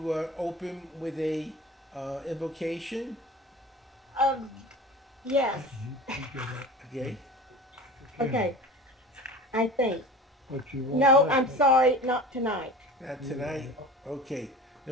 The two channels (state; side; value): normal; both; correlation 0.37